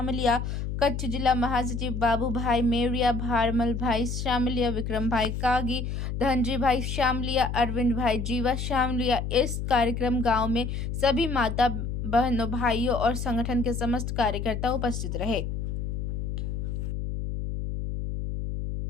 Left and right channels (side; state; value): left; noise; hum, 3 dB below the sound